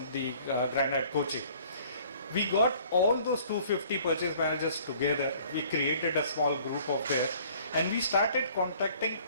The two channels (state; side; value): inverted; both; correlation -0.55